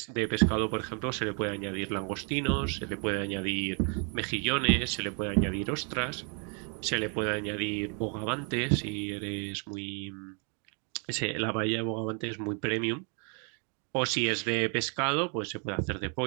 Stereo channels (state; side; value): quieter; left; 38.5 dB